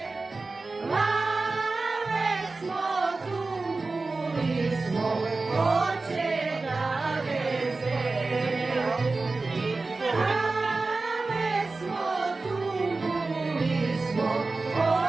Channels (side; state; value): left; quieter; 3.6 dB